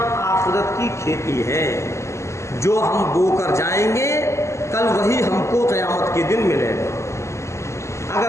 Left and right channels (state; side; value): late; right; 0.13 ms